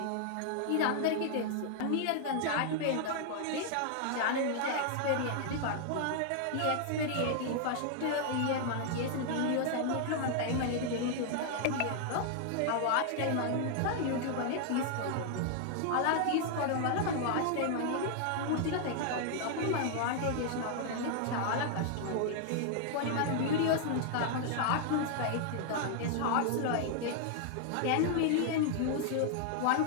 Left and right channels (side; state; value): both; different; correlation 0.00